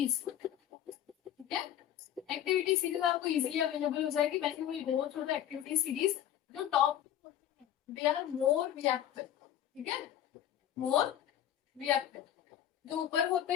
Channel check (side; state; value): right; quieter; 10.9 dB